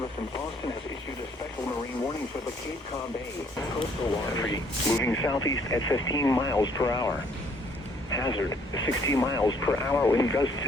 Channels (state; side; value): normal; both; correlation 0.64